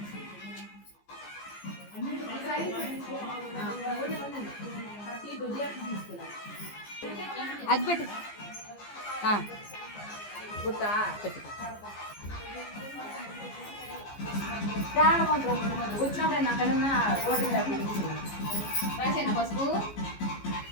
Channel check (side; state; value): right; late; 14 ms